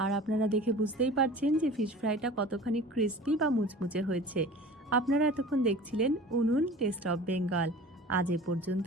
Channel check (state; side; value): normal; both; correlation 0.41